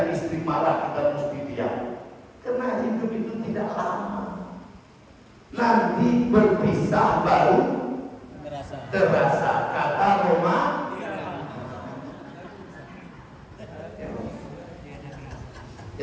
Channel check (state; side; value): identical; both; correlation 1.00